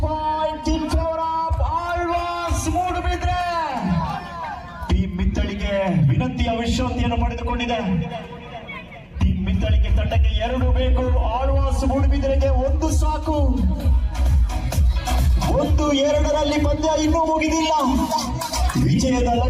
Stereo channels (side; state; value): both; identical; correlation 1.00